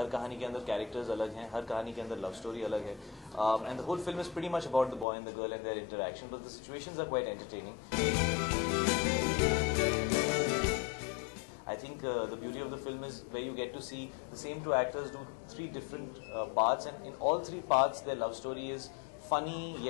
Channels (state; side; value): drops out; right; at 5.1 s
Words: कहानी के अंदर कैरेक्टर्स अलग हैं, हर कहानी के अंदर लव स्टोरी अलग है, and the whole film is pretty much about the boy and the girl and their interaction, but the situations are quite entertaining. I think the beauty of the film is where you get to see the same 2 actors do 3 different parts, and in all 3 parts their love story is funny